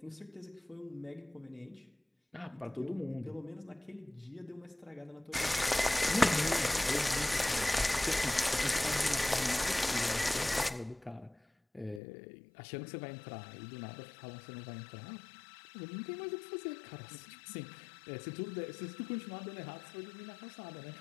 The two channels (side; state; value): right; drops out; at 12.0 s